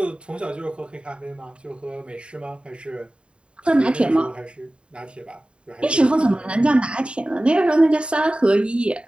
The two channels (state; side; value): late; left; 0.054 ms